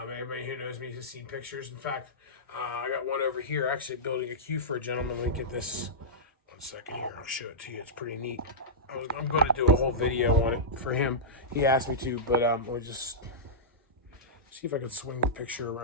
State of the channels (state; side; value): normal; both; correlation -0.13